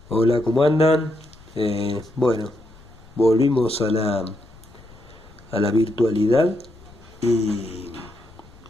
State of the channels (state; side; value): noise; left; rumble, 23 dB below the sound